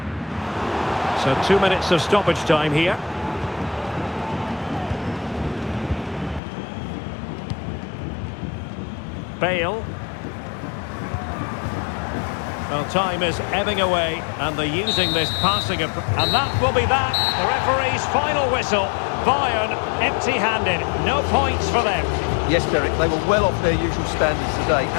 So 2 minutes of stoppage time here. Bale. Well, time is ebbing away, and they're using this passing and that will be that. The referee's final whistle. Bayern empty-handed. No points for them. Yes, Derek, they were well off their usual standards today,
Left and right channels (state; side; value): drops out; right; at 6.4 s